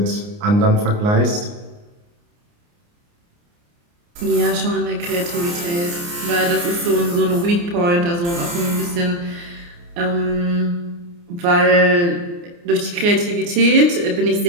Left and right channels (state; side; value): late; left; 29 ms